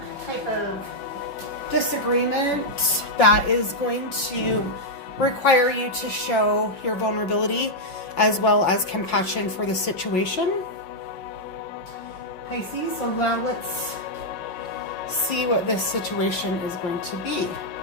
type of disagreement that is going to require you to show your vulnerability as well as compassion for the situation. Pisces, so now let's see what this situation is going to be.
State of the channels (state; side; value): late; right; 5.4 ms